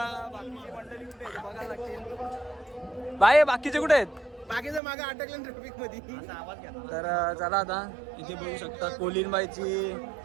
मंडळी कुठे आहेत बघायला लागतील. बाई बाकीचे कुठे आहेत? बाकीचं मागे अटकलं ट्रॅफिक मध्ये. तर चला आता इथे बघू शकता कोलीनबाईची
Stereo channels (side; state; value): left; drops out; at 4.8 s